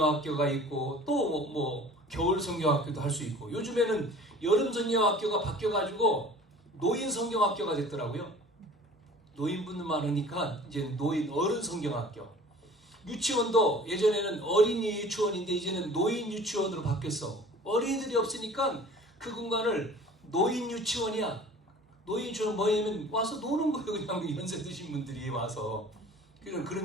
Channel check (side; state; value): both; normal; correlation 0.46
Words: 있고 또 뭐 겨울 성경학교도 할 수 있고, 요즘에는 여름 성경학교가 바뀌어가지고 노인 성경학교가 됐더라고요. 노인분들 많으니까 이제 어른 성경학교. 유치원도 예전에는 어린이 유치원인데 이제는 노인 유치원으로 바뀌었어. 어린이들이 없으니까 그 공간을 노인 유치원이야. 노인 유치원 뭐냐면 와서 노는 거예요. 그냥 연세 드신 분들이 와서.